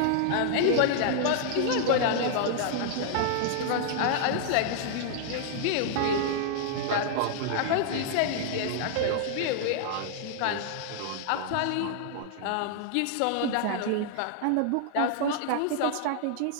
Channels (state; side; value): different; both; correlation -0.01